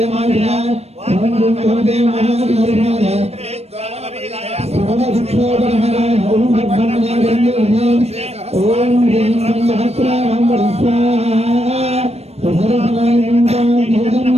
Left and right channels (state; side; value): late; left; 0.31 ms